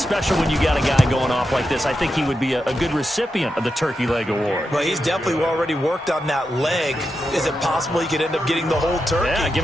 when you got a guy going off like this. I think he would be a good recipient of the Turkey Leg Award. Well, he's definitely already worked on that leg. Is it possible he could end up getting the whole turkey? Yeah, give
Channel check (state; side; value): normal; both; correlation 0.88